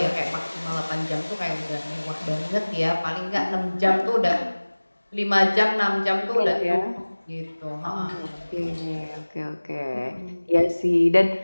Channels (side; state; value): both; inverted; correlation -1.00